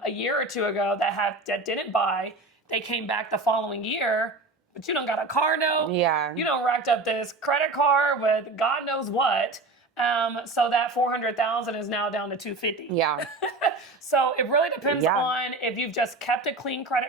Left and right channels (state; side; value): quieter; left; 3.2 dB